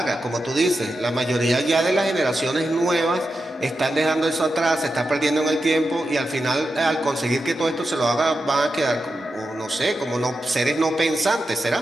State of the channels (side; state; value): both; normal; correlation 0.89